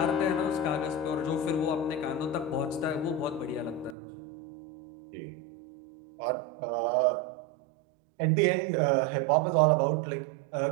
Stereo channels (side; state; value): left; drops out; at 4.0 s